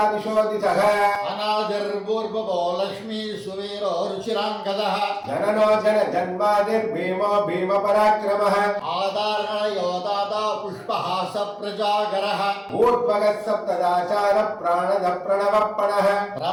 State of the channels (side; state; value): both; identical; correlation 1.00